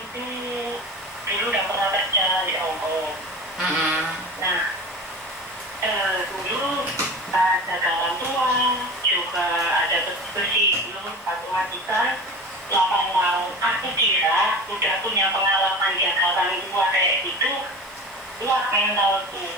tuh dulu udah pernah kerja di Hongkong. Nah, dulu ada orang tua, juga ada bersih dulu matematika 8 tahun. Aku kira udah punya pengalaman jaga orang tua kayak gitu, kuat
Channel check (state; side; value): normal; both; correlation 0.33